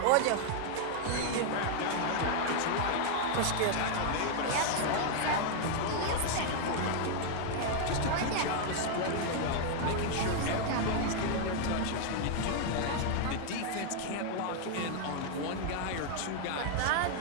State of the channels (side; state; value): both; different; correlation 0.00